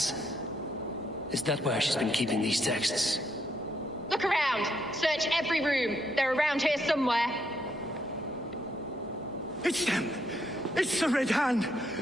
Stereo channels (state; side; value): normal; both; correlation 0.75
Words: Is that where she's been keeping these texts? Look around! Search every room! They're around here somewhere! It's them! It's the Red Hand!